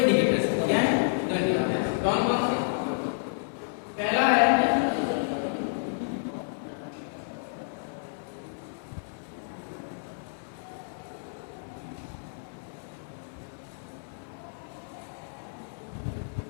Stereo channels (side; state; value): right; silent; 58 dB below the other